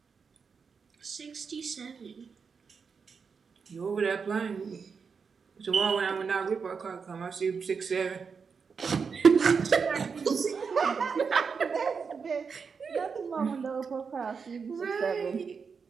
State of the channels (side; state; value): left; quieter; 5.6 dB